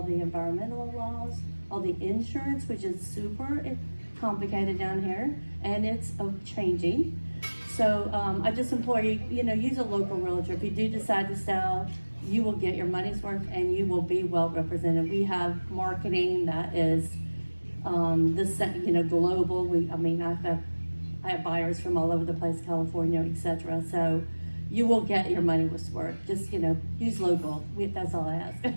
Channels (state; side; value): inverted; both; correlation -1.00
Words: the environmental laws, all the insurance, which is super complicated down here, and it's changing. So I just implore you, use a local realtor. If you do decide to sell, you will get your money's worth and you will be well represented. We have marketing that is global. I have buyers from all over the place, California, etc. So you will get your money's worth. Just use local. That's all I ask.